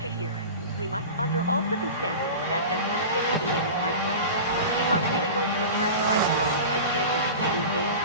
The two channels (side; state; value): both; inverted; correlation -0.32